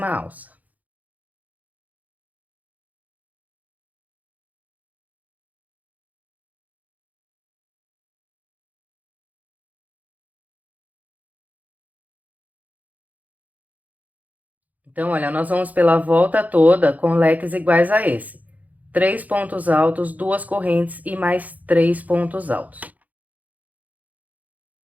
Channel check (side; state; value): left; late; 0.078 ms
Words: alça. Então, olha, nós vamos pela volta toda com leques iguais a esse. 3 pontos altos, 2 correntes e mais 3 pontos altos.